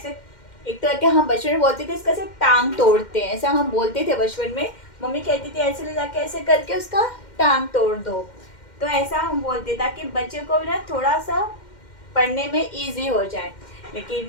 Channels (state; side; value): late; right; 2.1 ms